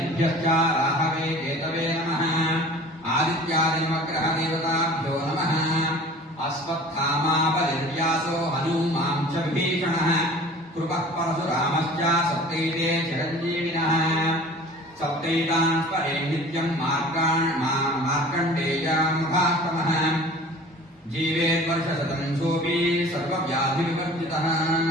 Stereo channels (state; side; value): normal; both; correlation 0.44